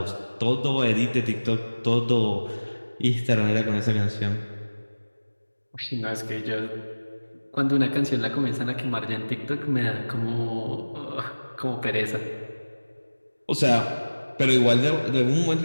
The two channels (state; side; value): inverted; both; correlation -1.00